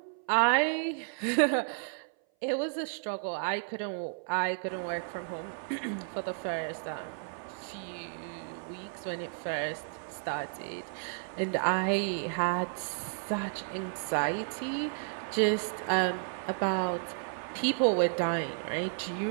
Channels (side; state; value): left; silent; 56 dB below the other